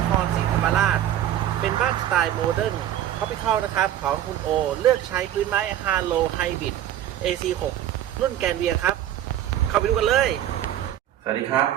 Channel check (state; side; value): quieter; left; 11.7 dB